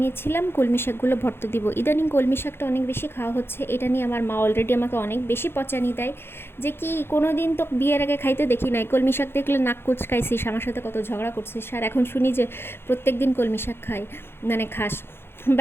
নিয়েছিলাম, কলমি শাকগুলো ভর্তা দিব। ইদানিং কলমি শাকটা অনেক বেশি খাওয়া হচ্ছে, এটা নিয়ে আমার মা অলরেডি আমাকে অনেক বেশি পচানি দেয় যে কি কোনো দিন তো বিয়ের আগে খাইতে দেখি নাই, কলমি শাক দেখলে নাক কুচকাইছিস, আমার সাথে কত ঝগড়া করছিস, আর এখন শুনি যে প্রত্যেক দিন কলমি শাক খাই, মানে খাস।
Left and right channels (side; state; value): right; late; 0.11 ms